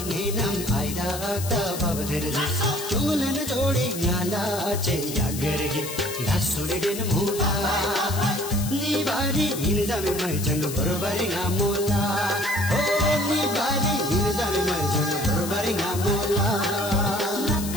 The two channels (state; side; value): noise; left; hiss, 9 dB below the sound